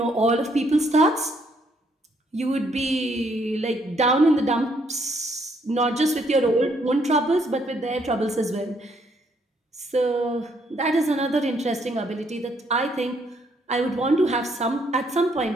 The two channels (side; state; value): both; normal; correlation 0.70